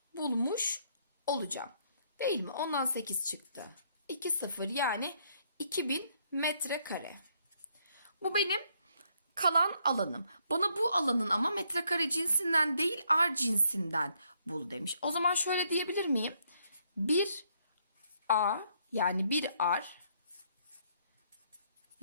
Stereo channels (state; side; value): inverted; both; correlation -0.71